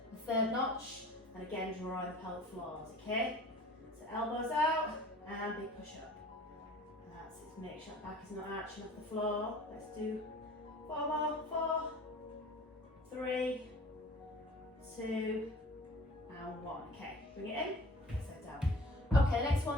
the third notch, and again, draw the pelvic floors, okay? So elbows out, and big push up. That's it, make sure that back is not arching off the floor. Let's do 4 more, 4, 3, 2, and 1. Okay, bring it in, set down. Okay, next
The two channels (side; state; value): both; normal; correlation 0.45